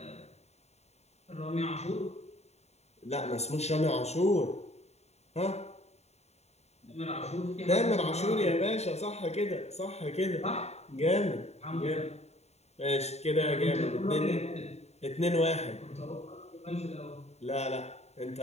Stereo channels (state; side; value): late; right; 0.31 ms